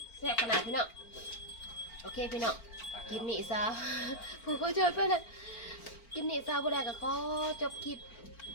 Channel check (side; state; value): right; late; 4.4 ms